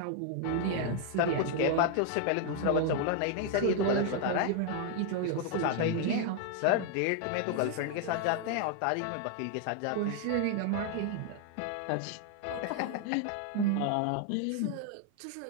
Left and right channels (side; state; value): both; different; correlation 0.00